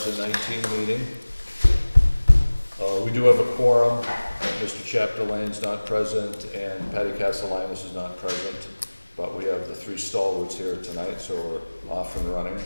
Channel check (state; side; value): inverted; both; correlation -1.00